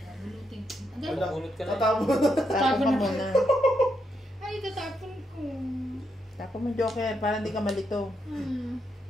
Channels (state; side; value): normal; both; correlation 0.80